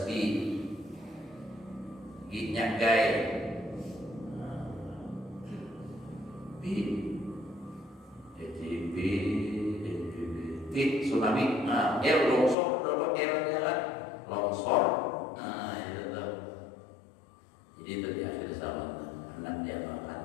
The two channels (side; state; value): right; drops out; at 12.6 s